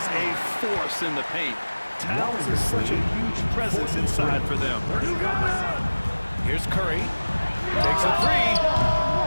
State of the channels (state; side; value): inverted; both; correlation -1.00